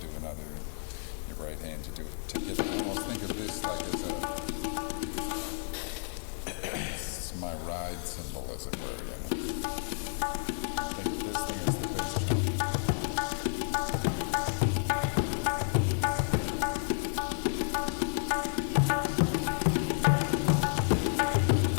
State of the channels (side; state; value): right; silent; 57 dB below the other